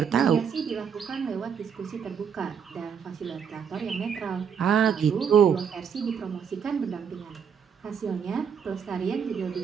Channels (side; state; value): left; quieter; 7.1 dB